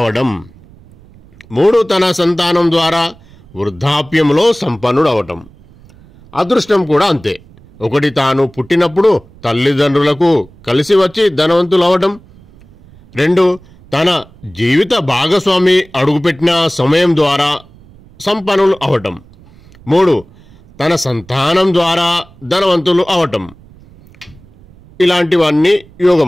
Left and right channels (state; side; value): noise; right; rumble, 25 dB below the sound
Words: 3 తన సంతానం ద్వారా వృద్ధాప్యంలో సంపన్నుడు అవటం. అదృష్టం కూడా అంతే. ఒకటి తాను పుట్టినప్పుడు తల్లిదండ్రులకు కలిసి వచ్చి ధనవంతులు అవటం, 2 తన జీవిత భాగస్వామి అడుగుపెట్టిన సమయం ద్వారా సంపన్నులు అవటం, 3 తన సంతానం ద్వారా ధనవంతులు అవటం. ఇలాంటివన్నీ